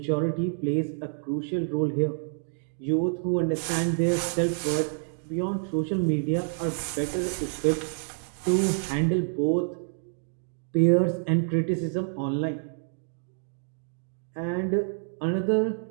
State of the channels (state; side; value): silent; left; digital silence